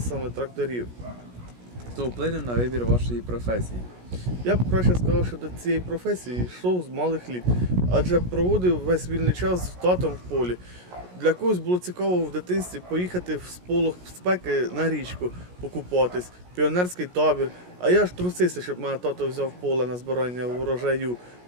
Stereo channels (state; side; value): late; left; 17 ms